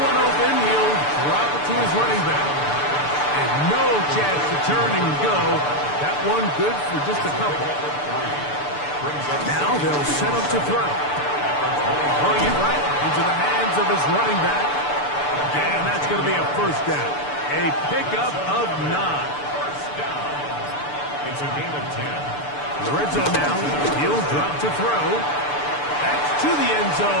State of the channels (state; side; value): late; right; 6.8 ms